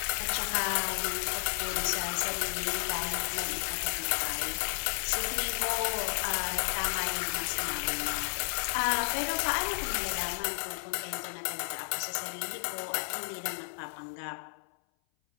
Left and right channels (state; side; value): silent; right; 56 dB below the other